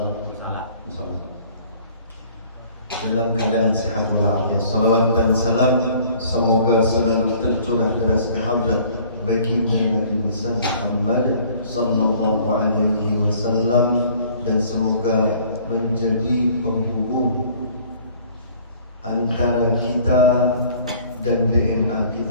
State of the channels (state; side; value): inverted; both; correlation -0.54